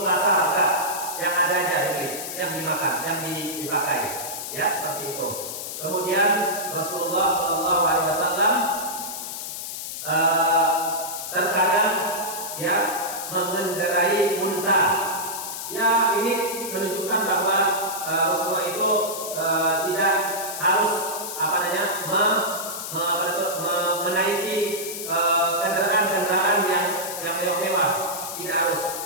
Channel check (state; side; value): noise; left; hiss, 7 dB below the sound